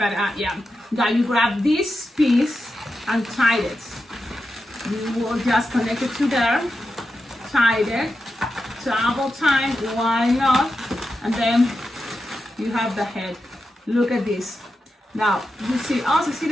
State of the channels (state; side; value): normal; both; correlation 0.89